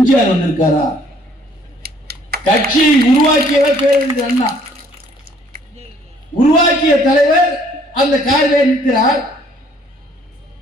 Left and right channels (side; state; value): both; normal; correlation 0.61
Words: வந்திருக்காரா? கட்சியை உருவாக்கியவர் பேரறிஞர் அண்ணா, உருவாக்கிய தலைவர் அந்த காரிலே நிற்கிறார்.